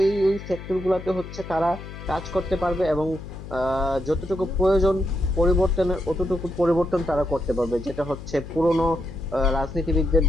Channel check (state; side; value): noise; left; hum, 12 dB below the sound